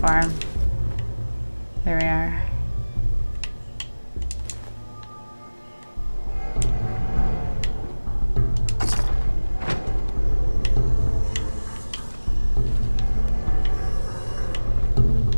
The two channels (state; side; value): inverted; both; correlation -1.00